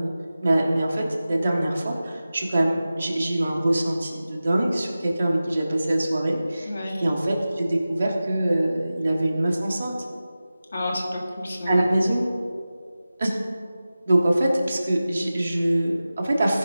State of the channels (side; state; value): both; inverted; correlation -0.95